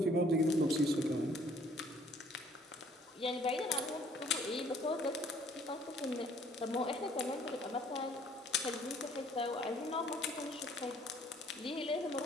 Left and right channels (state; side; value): normal; both; correlation 0.59